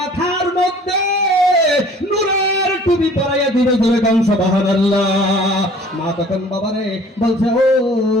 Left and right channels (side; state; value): both; normal; correlation 0.51